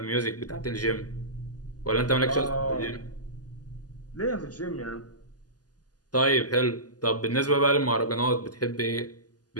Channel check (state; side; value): late; right; 0.68 ms